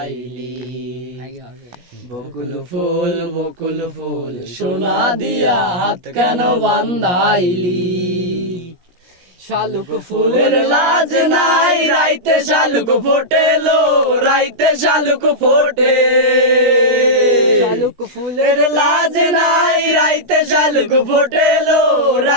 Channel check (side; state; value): left; late; 17 ms